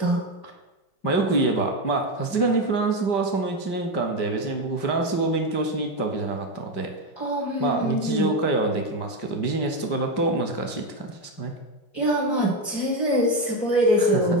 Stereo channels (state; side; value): late; right; 5.1 ms